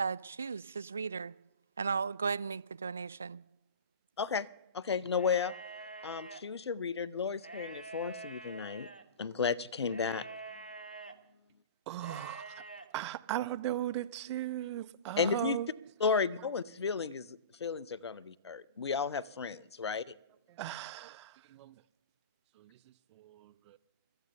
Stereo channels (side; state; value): both; inverted; correlation -0.33